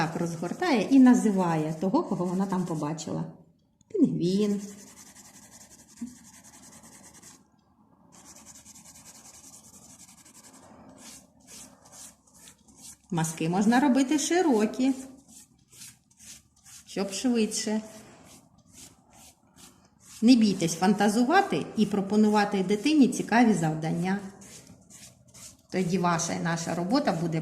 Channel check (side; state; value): both; identical; correlation 1.00